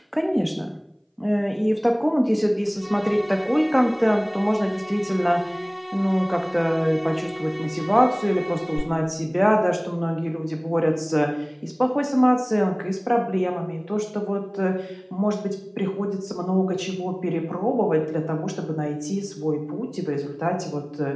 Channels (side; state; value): both; identical; correlation 1.00